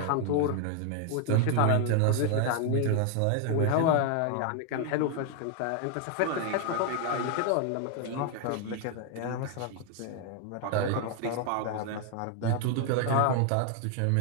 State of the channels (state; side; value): different; both; correlation 0.00